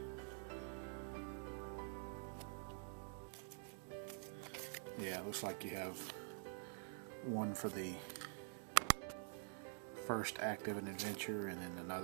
Yeah, it looks like you have one for the first act of an adventure, and then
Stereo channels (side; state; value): left; silent; digital silence